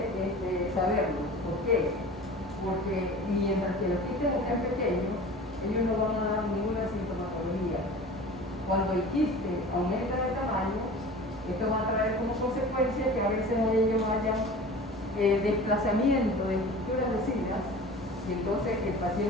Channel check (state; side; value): normal; both; correlation 0.39